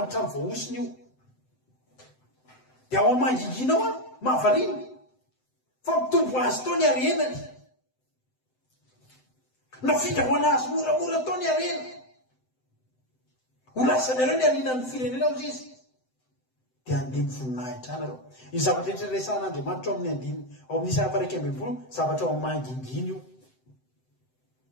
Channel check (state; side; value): late; right; 7.8 ms